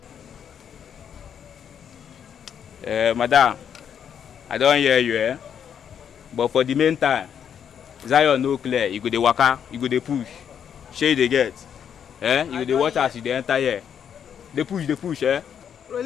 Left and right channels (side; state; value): right; quieter; 8.3 dB